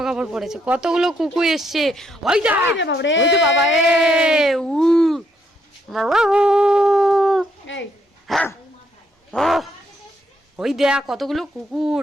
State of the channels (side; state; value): both; normal; correlation 0.74